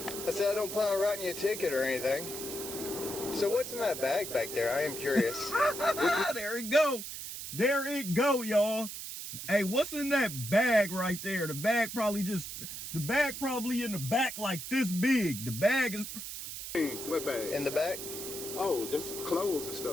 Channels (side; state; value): right; noise; hiss, 8 dB below the sound